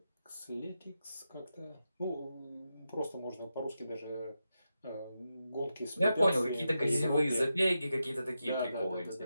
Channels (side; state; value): both; inverted; correlation -0.88